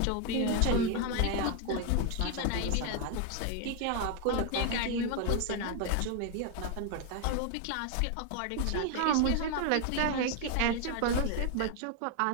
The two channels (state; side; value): different; both; correlation 0.01